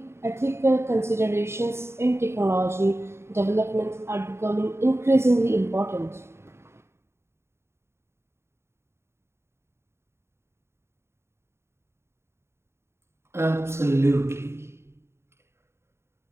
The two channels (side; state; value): left; late; 0.12 ms